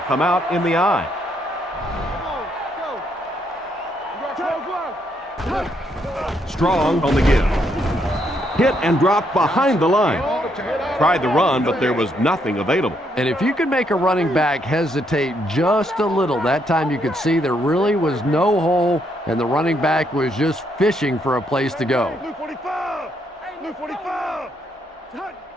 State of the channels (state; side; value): normal; both; correlation 0.74